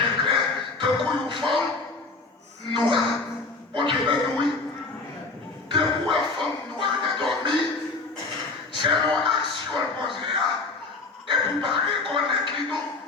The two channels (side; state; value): right; quieter; 3.7 dB